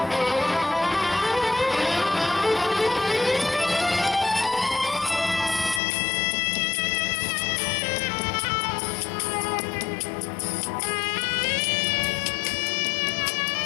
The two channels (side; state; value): right; drops out; at 5.8 s